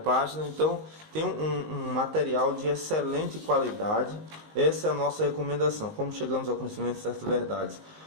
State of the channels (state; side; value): late; left; 19 ms